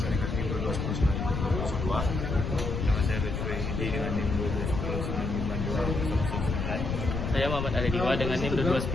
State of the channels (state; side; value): noise; left; rumble, 2 dB below the sound